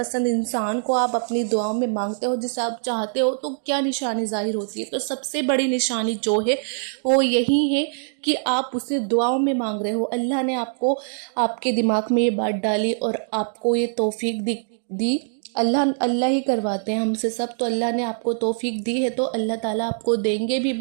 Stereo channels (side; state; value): left; silent; digital silence